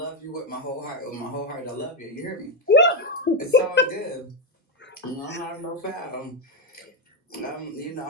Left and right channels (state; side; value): normal; both; correlation 0.07